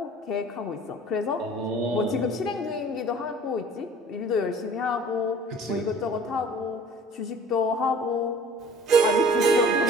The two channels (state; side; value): normal; both; correlation 0.48